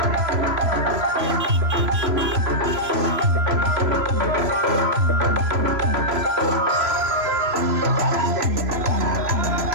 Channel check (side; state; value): left; late; 3.0 ms